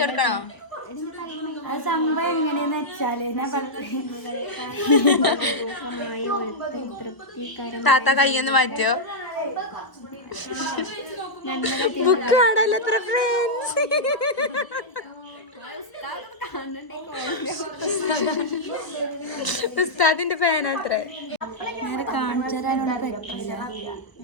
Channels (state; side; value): late; right; 1.0 ms